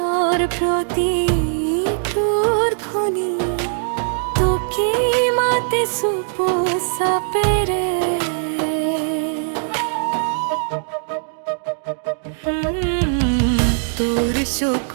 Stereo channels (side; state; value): left; silent; digital silence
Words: প্ৰতি তোৰ ধ্বনি তোকে মাতে চুপ চাপেৰে তোৰ